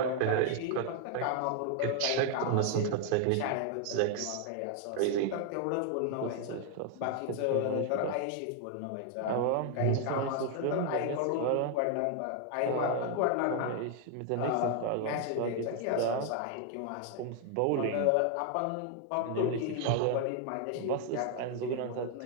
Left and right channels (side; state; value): both; different; correlation 0.00